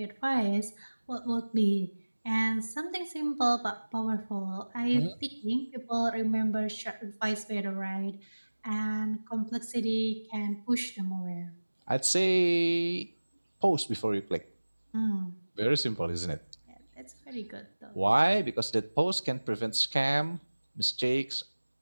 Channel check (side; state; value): both; inverted; correlation -1.00